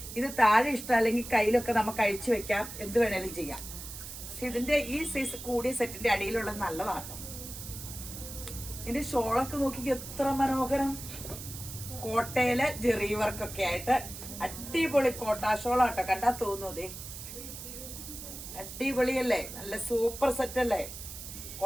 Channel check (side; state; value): right; noise; hiss, 11 dB below the sound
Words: ഇത് താഴെ ഇഷ്ടമല്ലെങ്കിൽ കയ്യിലൊക്കെ നമുക്ക് അഴിച്ചു വെക്കാം, എന്ത് വേണേലും ചെയ്യാം. പക്ഷെ ഇതിന്റെ ഈ സൈസ് കൂടിയ സെറ്റിന്റെ അടിയിലുള്ളത് നല്ലതാണ്. ഇതിന്റെ ഷോളൊക്കെ നോക്കി എത്ര മനോഹരം, കോട്ടയിലെ ജെറി വർക്കൊക്കെ ആയിട്ട് അടിപൊളി കോട്ടാ ഷോളാട്ടോ. കണ്ടാ തോന്നുന്നതേ അടിപൊളിയല്ലേ, നല്ല സൂപ്പർ സെറ്റ് അല്ലേ.